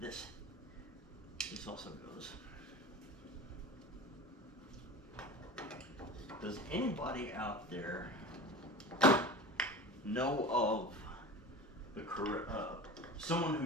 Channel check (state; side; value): normal; both; correlation 0.34